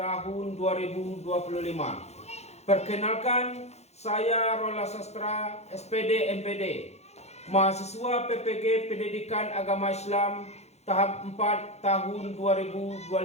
2025. Perkenalkan, saya Rola Sastra, SPD MPD, mahasiswa PPG Pendidikan Agama Islam tahap 4 tahun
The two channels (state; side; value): late; right; 0.31 ms